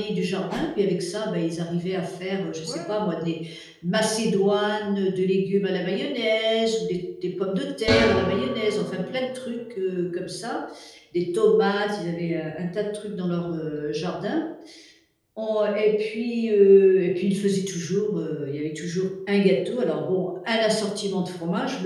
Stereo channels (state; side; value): identical; both; correlation 1.00